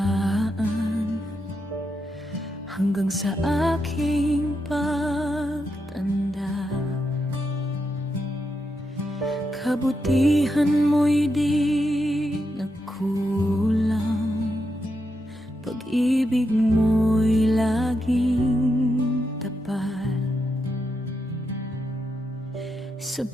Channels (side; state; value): both; normal; correlation 0.84